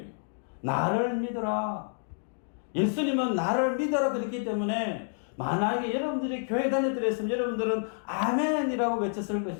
나를 믿어라. 예수님은 나를 믿어라 그랬기 때문에 만약에 여러분들이 교회 다녔더라 했으면 여러분들은 아멘이라고 외쳤을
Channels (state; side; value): silent; right; digital silence